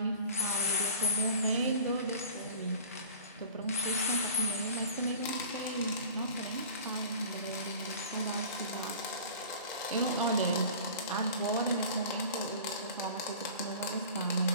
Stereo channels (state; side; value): inverted; both; correlation -0.42